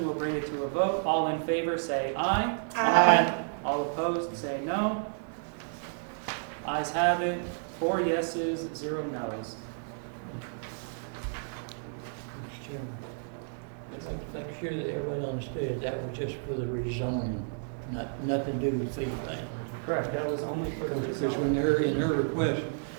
we'll bring it to a vote. All in favor, say aye. Aye. All opposed, say no. Ayes have it. 4 yeses, 0 noes. Chairman. I'm sure that everyone understood that was just for the rezoning, nothing to do with fee thing. Correct, that was only for the Because rezoning. in her request,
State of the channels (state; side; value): silent; left; 57 dB below the other